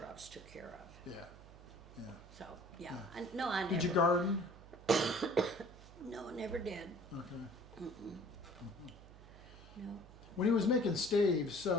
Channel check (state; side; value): noise; right; hum, 18 dB below the sound